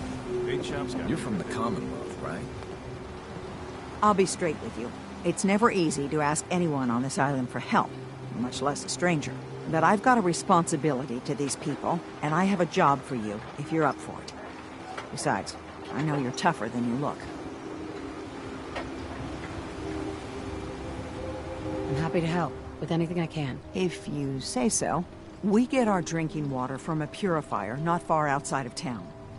Big shop's got... You're from the Commonwealth, right? I'll be straight with you. It's never easy to ask anyone on this island for help, much less a stranger. But I've got a responsibility to these people, and I have a job for you, if you're up for it. Besides, I know you're tougher than you look. I'm happy to help with anything I can. If you say so. We get our drinking water from a purifier not far outside of town.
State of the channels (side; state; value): both; identical; correlation 1.00